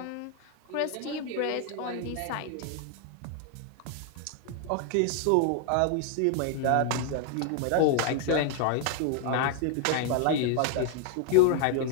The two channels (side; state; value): both; different; correlation 0.00